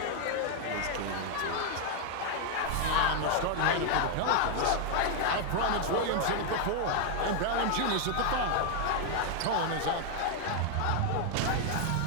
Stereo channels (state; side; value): different; both; correlation 0.00